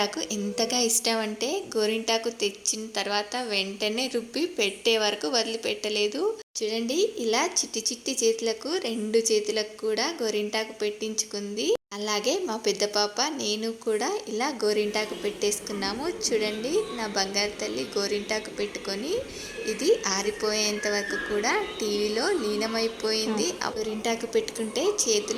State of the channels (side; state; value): both; identical; correlation 1.00